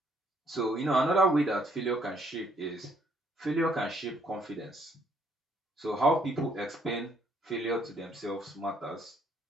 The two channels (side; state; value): both; normal; correlation 0.67